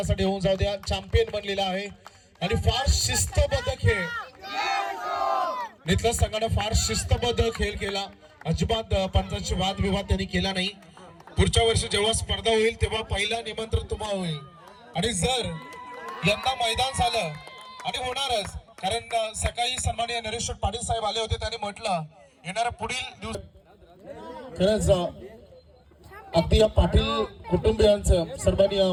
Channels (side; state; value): both; identical; correlation 1.00